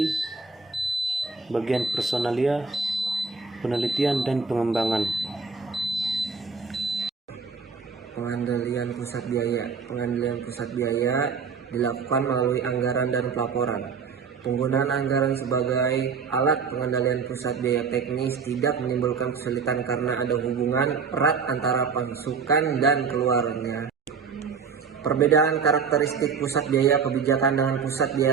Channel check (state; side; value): quieter; left; 5.6 dB